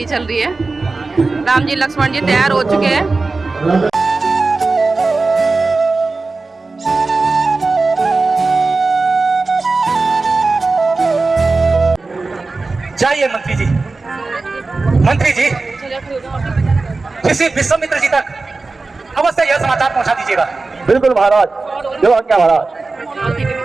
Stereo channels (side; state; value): left; quieter; 3.7 dB